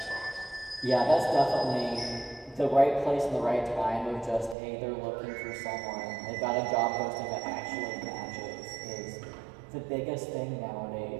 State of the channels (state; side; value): drops out; left; at 4.5 s